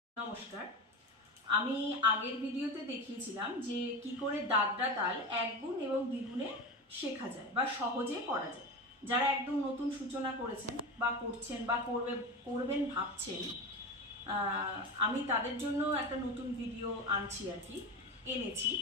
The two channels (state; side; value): normal; both; correlation 0.24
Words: নমস্কার। আমি আগের ভিডিওতে দেখিয়েছিলাম যে কি করে দাদরা তাল এক গুণ এবং দ্বিগুণে শেখা যায় বা সহজে করা যায়। যারা একদম নতুন সূচনা করেছেন বা করছেন বা করবেন ভাবছেন, আমি তাদের জন্য একটা নতুন ভিডিও আনছি আর কি, এনেছি।